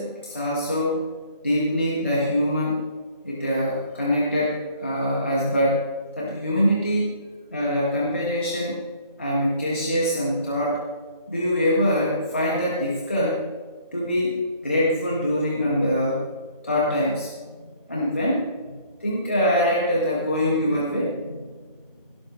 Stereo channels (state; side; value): inverted; both; correlation -0.58